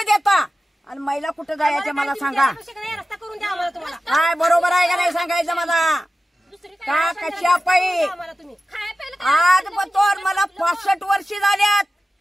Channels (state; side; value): normal; both; correlation 0.94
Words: आणि महिला कुठं जायचं मला सांगा. काय बरोबर आहे का नाही सांगायचं मला का कशा पाहिजे. आज बतोर मला 65 वर्षे झाल्यात,